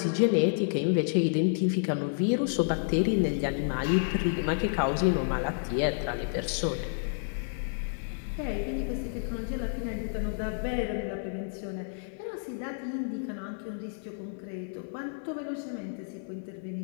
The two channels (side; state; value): right; silent; 58 dB below the other